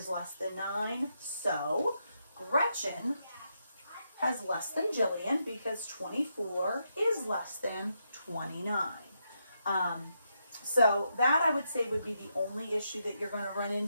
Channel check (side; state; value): both; inverted; correlation -0.82